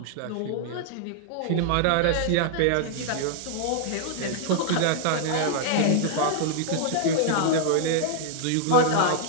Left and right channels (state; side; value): different; both; correlation 0.00